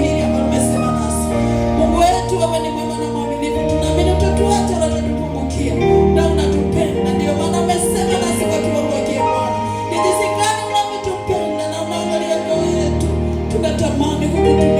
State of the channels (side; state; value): both; identical; correlation 1.00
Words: hili ambalo umesema nasi. Mungu wetu, wewe ni mwema na mwaminifu, tunaamini utatuacha wala utatupungukia, na unatupenda. Ndio maana umesema nasi kwa kiwango hiki Bwana, ni jinsi gani unavyotupenda na unaangalia mioyo yetu. Tunatamani